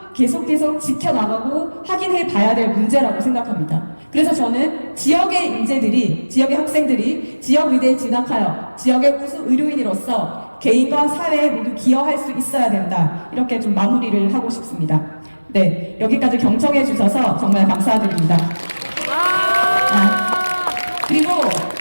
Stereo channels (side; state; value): both; inverted; correlation -1.00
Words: 계속 지켜나가고 확인해 봐야 될 문제라고 생각합니다. 그래서 저는 지역의 인재들이, 지역의 학생들이 지역의대에 진학하여 지역의 우수 의료인으로서 개인과 사회에 모두 기여할 수 있어야 된다. 이렇게 좀 마무리를 하고 싶습니다. 네, 여기까지 경청해 주셔서 정말 감사드립니다. 그리고